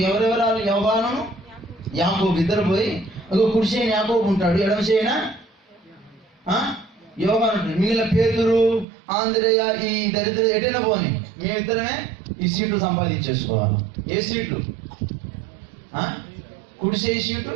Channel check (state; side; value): drops out; left; at 8.8 s